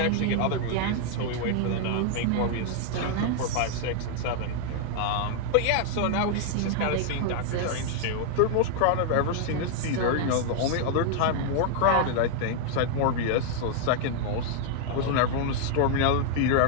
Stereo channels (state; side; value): different; both; correlation 0.00